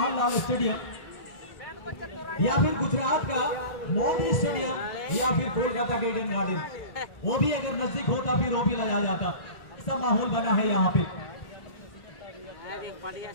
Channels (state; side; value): late; right; 1.4 ms